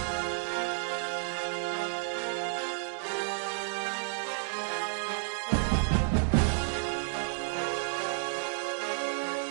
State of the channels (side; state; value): left; silent; digital silence